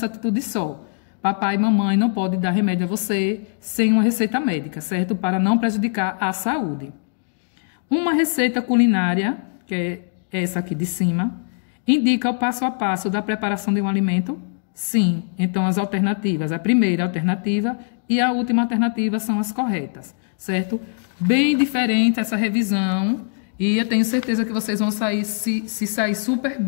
atitude só. Papai e mamãe não podem dar remédio a você sem uma receita médica, certo? Para não prejudicar a saúde. Uma receita culinária, que é essa aqui de cima, indica o passo a passo da preparação de um alimento? Sim. Então, as alternativas, a primeira alternativa e a última alternativa são as corretas, certo? Bem diferente essa revisão e eu tenho certeza que vocês vão sair, se sair super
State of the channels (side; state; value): right; silent; digital silence